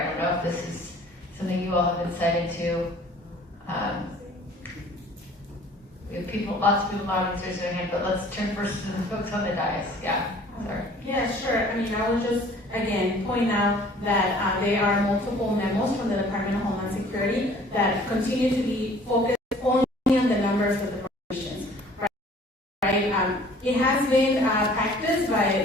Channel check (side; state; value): both; normal; correlation 0.52